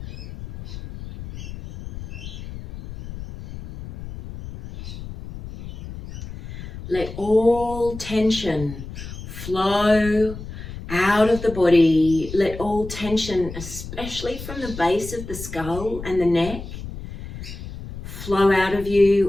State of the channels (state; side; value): noise; left; rumble, 11 dB below the sound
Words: Let all tension flow out of the body. Let all tension, especially from the base of the skull and the neck, flow out of